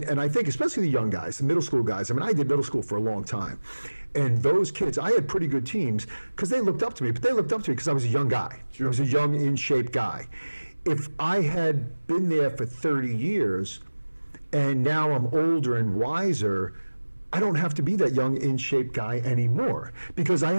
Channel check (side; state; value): both; inverted; correlation -1.00